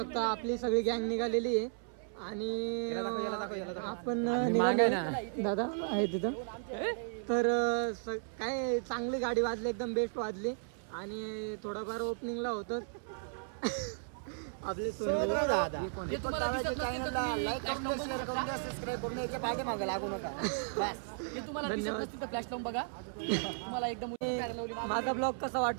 आपली सगळी गँग निघालेली आहे आणि आपण निघाले दादा आहे तिथं तर काय चांगली गाडी वाजली एकदम बेस्ट वाजली आणि थोडाफार ओपनिंगला होतं आपले माझा ब्लॉग कसा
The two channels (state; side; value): silent; left; 55 dB below the other